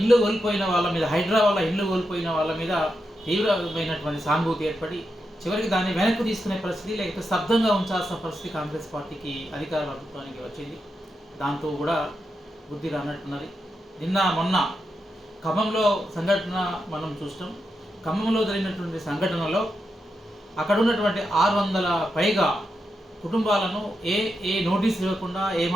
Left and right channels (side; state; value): both; normal; correlation 0.86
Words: కోల్పోయిన వాళ్ళ మీద, హైడ్రా వల్ల ఇల్లు కోల్పోయిన వాళ్ళ మీద తీవ్రమైనటువంటి సానుభూతి ఏర్పడి చివరికి దాన్ని వెనక్కి తీసుకునే పరిస్థితి, లేకపోతే స్తబ్దంగా ఉంచాల్సిన పరిస్థితి కాంగ్రెస్ పార్టీకి, అధికార ప్రభుత్వానికి వచ్చింది. దాంతో కూడా బుద్ధి రానట్టున్నది. నిన్న మొన్న ఖమ్మంలో సంఘటన మనం చూస్తాం. ఖమ్మంలో జరిగినటువంటి సంఘటనలో అక్కడ ఉన్నటువంటి 600 పైగా కుటుంబాలను ఏ నోటీస్ ఇవ్వకుండా,